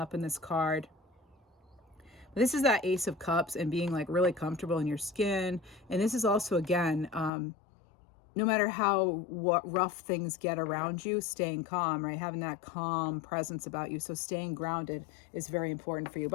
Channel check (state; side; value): drops out; right; at 7.3 s